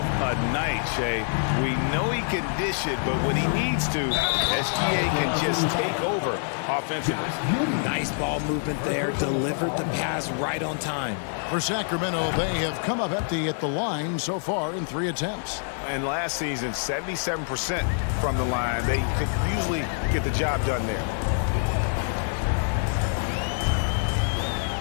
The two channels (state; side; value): silent; right; 61 dB below the other